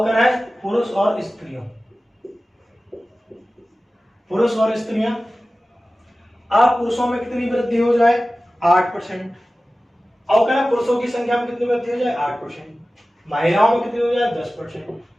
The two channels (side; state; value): both; normal; correlation 0.96